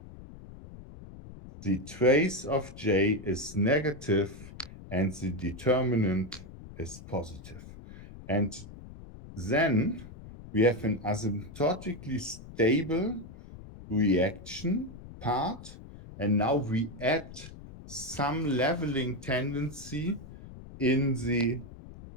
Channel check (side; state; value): left; noise; rumble, 16 dB below the sound